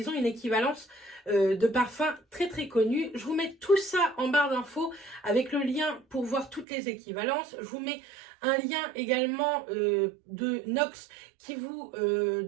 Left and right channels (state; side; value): drops out; left; at 6.7 s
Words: ont une équivalence de parfums très connus. Je vous mets tout ça en barre d'infos avec le lien pour voir toutes les équivalences. Je vous mets un lien également de Nox qui vous